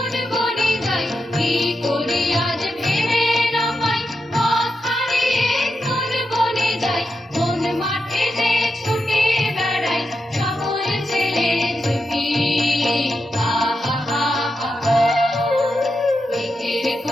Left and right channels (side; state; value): both; normal; correlation 0.87